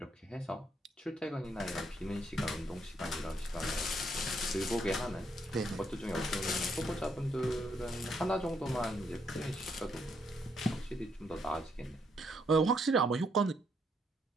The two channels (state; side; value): normal; both; correlation 0.74